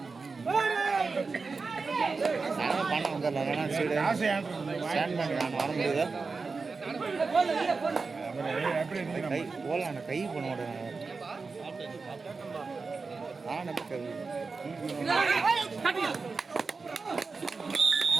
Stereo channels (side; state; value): left; quieter; 4.4 dB